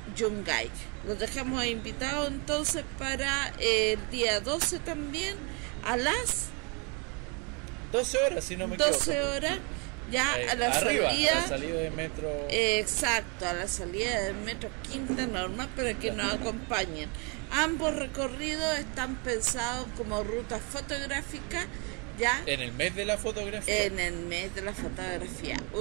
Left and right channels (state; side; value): quieter; left; 33.3 dB